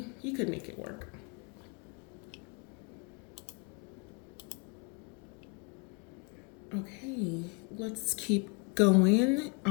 you could make it work. Okay, let's keep going.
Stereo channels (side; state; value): right; quieter; 32.2 dB